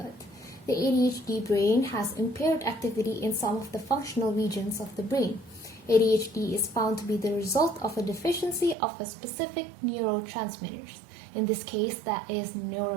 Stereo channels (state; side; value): drops out; left; at 8.8 s